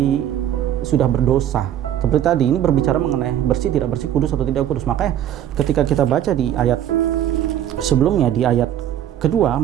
sudah berdosa. Seperti tadi, ini berbicara mengenai bersih tidak bersih, kudus atau tidak kudus. Makanya ketika kita baca di ayat sebelumnya, di ayat kedua,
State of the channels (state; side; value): quieter; left; 10.9 dB